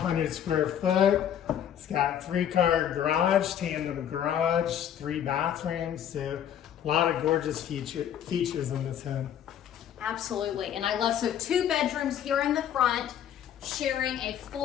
square foot. It's got 3-car garage, tandem garage, 3 bathrooms, so a lot of gorgeous features in this home. Absolutely, and I love, so 2 bedrooms here in the front, sharing a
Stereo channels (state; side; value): quieter; right; 9.8 dB